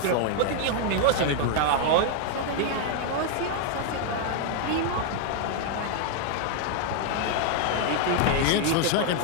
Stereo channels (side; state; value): both; different; correlation 0.00